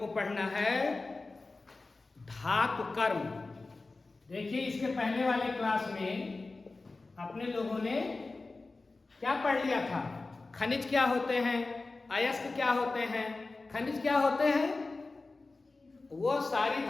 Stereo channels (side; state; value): right; quieter; 3.5 dB